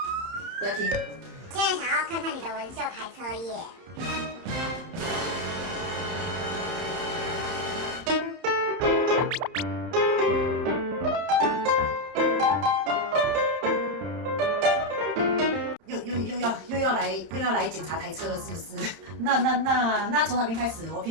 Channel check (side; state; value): left; late; 31 ms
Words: 不要听。现在想要看看你的纹绣台车耶。又要来检查台车了，是不是？那从哪边开始？我